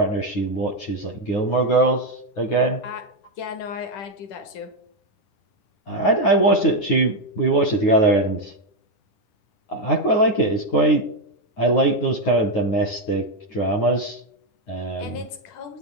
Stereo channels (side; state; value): right; late; 9.5 ms